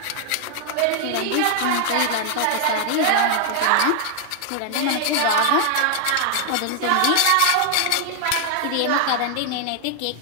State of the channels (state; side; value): different; both; correlation 0.00